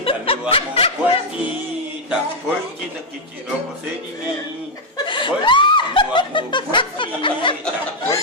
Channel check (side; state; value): both; normal; correlation 0.00